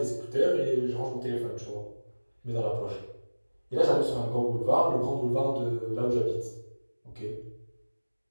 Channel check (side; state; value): both; inverted; correlation -1.00